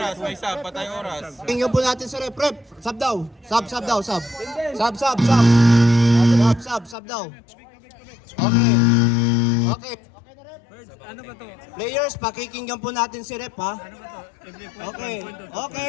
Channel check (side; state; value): right; drops out; at 7.0 s